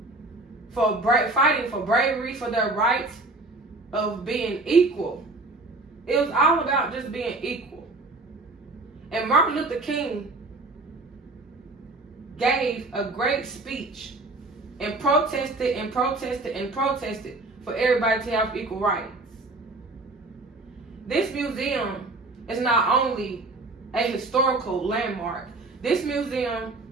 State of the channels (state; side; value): quieter; left; 3.1 dB